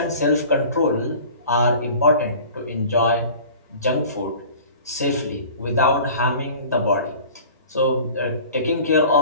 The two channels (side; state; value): both; inverted; correlation -0.43